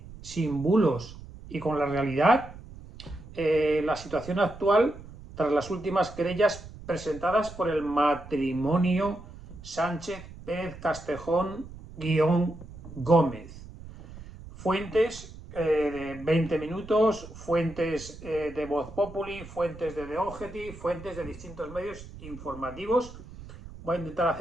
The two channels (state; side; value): noise; right; rumble, 15 dB below the sound